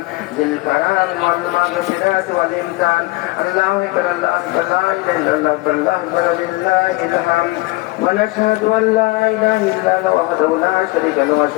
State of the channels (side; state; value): right; quieter; 22.1 dB